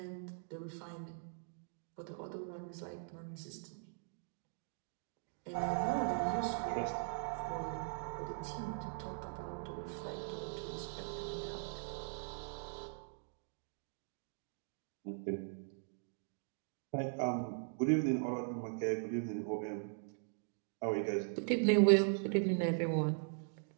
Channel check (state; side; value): silent; left; digital silence